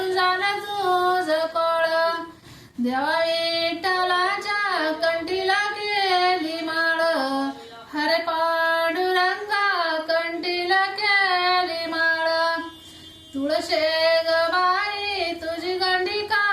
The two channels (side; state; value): both; identical; correlation 1.00